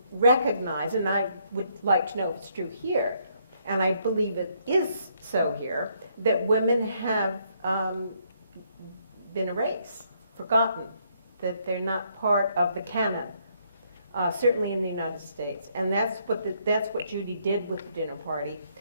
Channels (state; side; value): inverted; both; correlation -0.71